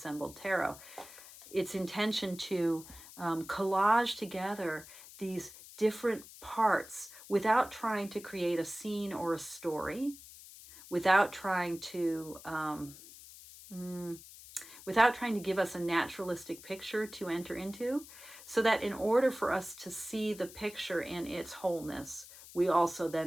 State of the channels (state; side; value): noise; left; hiss, 17 dB below the sound